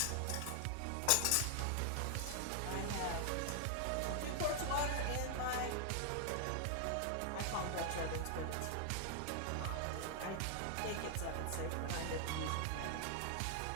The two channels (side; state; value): both; different; correlation 0.00